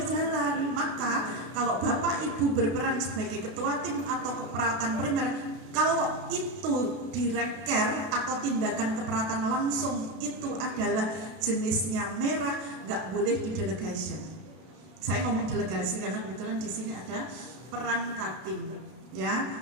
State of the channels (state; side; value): late; left; 32 ms